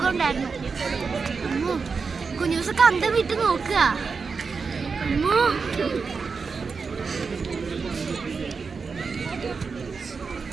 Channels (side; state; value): left; quieter; 5.0 dB